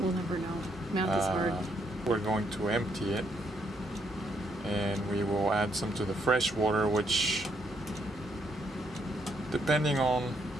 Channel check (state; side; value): normal; both; correlation 0.74